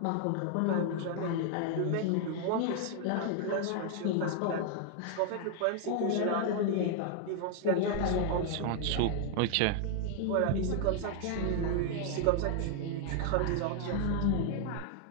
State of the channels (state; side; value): different; both; correlation 0.00